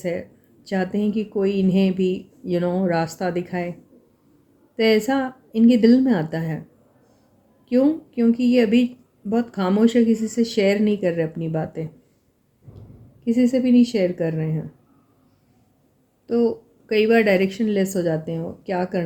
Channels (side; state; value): both; identical; correlation 1.00